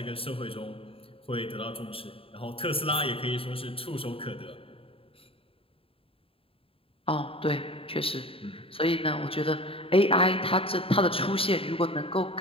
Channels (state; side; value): late; right; 0.27 ms